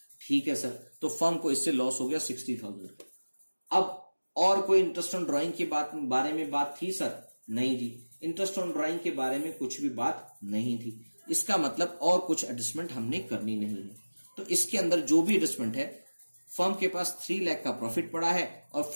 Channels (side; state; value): both; inverted; correlation -1.00